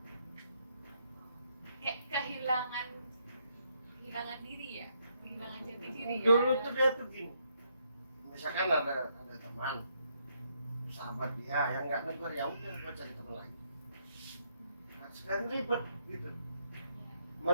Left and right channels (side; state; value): both; inverted; correlation -0.74